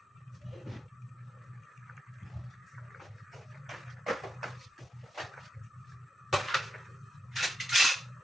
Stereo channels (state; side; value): normal; both; correlation 0.86